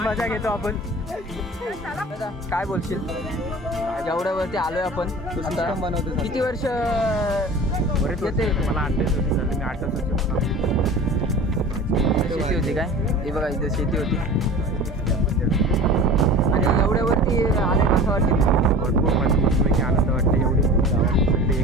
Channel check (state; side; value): normal; both; correlation 0.38